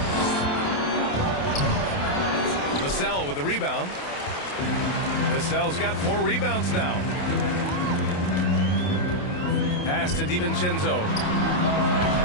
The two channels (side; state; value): right; late; 28 ms